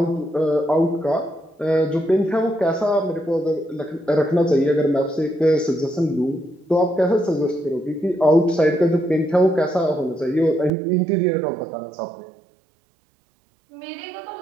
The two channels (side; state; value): left; drops out; at 10.7 s